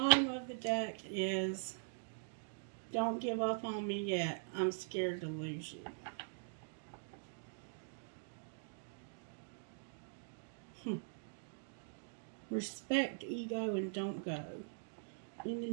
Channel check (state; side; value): silent; left; digital silence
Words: of the deck is, don't give up on me yet. I'm scared to lose you. Respect ego and don't go in the